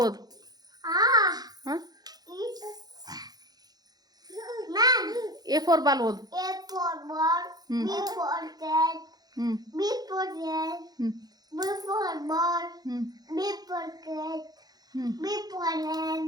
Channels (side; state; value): left; late; 0.19 ms